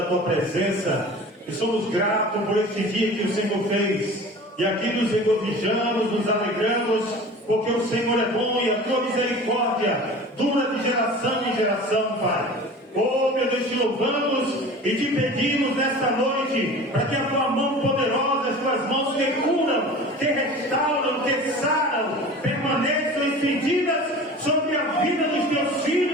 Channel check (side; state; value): both; normal; correlation 0.39